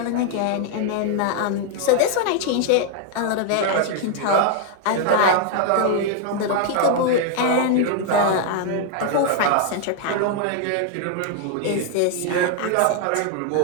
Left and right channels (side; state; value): both; different; correlation 0.00